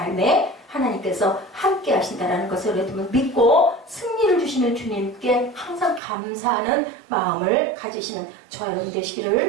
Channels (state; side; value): drops out; left; at 6.0 s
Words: 하나님께서 함께 하신다는 것을 여러분 믿고 승리를 주시는 주님께 항상 감사하는 마음을 가지시는 저와 여러분